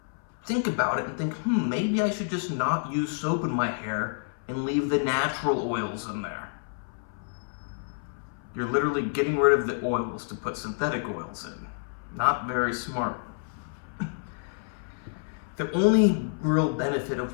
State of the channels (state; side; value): silent; right; 59 dB below the other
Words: think about it and think, maybe I should just not use soap in my hair and leave the natural oils in there. You're literally getting rid of the oils to put synthetic oils in. Not very smart. The only real benefit